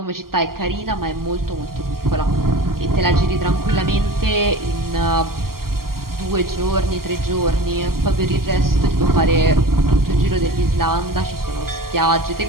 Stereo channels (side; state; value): left; late; 0.92 ms